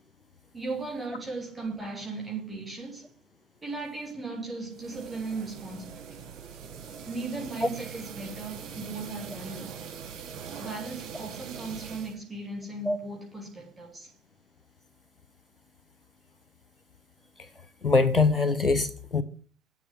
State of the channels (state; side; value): normal; both; correlation 0.53